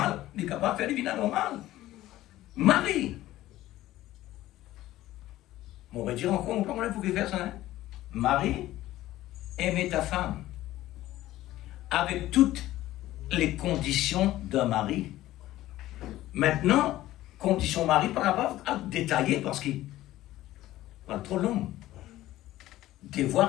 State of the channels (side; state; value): right; quieter; 15.3 dB